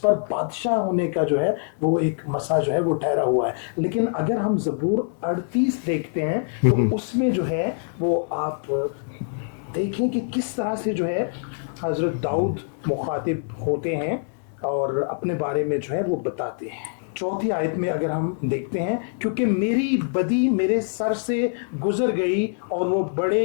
बादशाह होने का जो है वो एक मसा जो है वो ठहरा हुआ है। लेकिन अगर हम ज़बूर 38 देखते हैं तो उसमें जो है वो आप देखें कि किस तरह से जो है हजरत दाऊद मुखातिब होते हैं और अपने बारे में जो है वो बताते हैं। 4थी आयत में अगर हम देखते हैं, क्योंकि मेरी बदी मेरे सर से गुजर गई और वो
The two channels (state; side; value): silent; right; digital silence